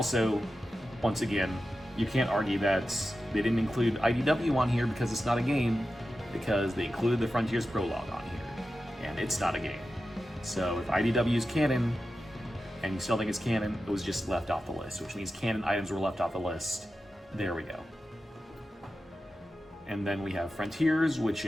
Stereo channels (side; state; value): both; normal; correlation 0.92